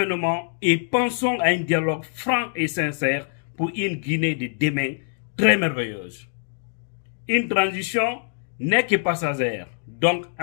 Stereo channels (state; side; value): silent; right; digital silence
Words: et pensons à un dialogue franc et sincère pour une Guinée de demain très merveilleuse. Une transition n'est que passagère. Donc,